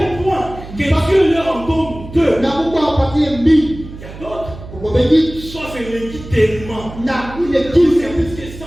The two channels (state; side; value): noise; right; hum, 14 dB below the sound